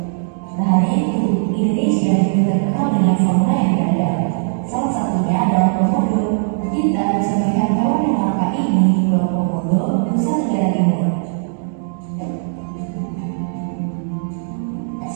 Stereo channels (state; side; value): silent; left; 66 dB below the other